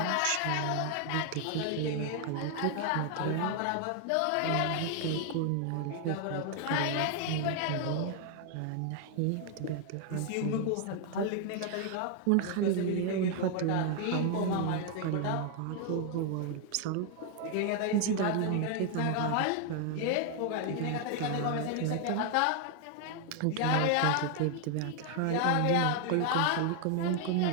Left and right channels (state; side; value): different; both; correlation 0.00